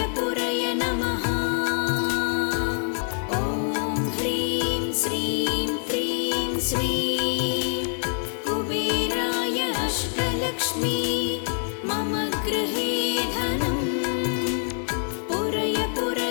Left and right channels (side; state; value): right; silent; 55 dB below the other